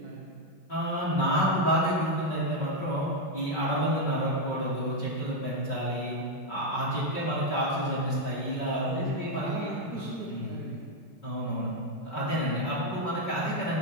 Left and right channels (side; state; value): right; late; 5.3 ms